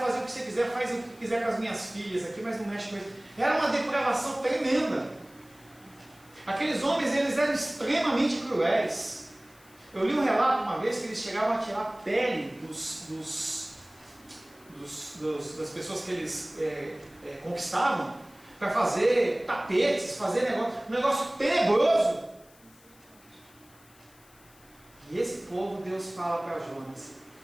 o que você quiser, faz o que quiser com as minhas filhas aqui, mas não mexe com isso. Era uma depravação tremenda. Aqueles homens, eles eram extremamente cruéis. Eu li um relato uma vez que eles chegavam a tirar a pele das pessoas que eles conquistavam para fazer tapetes, fazer um negócio tenebroso. E esse povo, Deus fala para Jonas,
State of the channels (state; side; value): noise; left; hiss, 27 dB below the sound